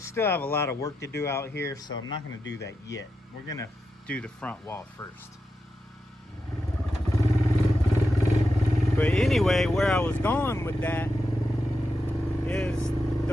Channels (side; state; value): both; normal; correlation 0.88